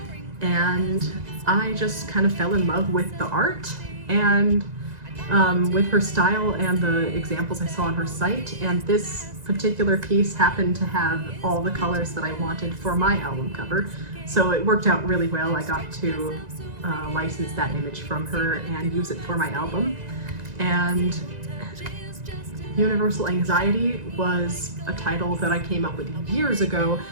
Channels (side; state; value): left; late; 2.0 ms